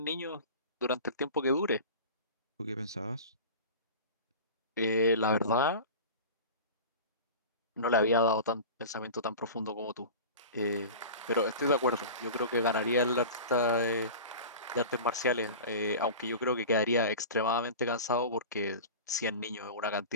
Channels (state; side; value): inverted; both; correlation -0.34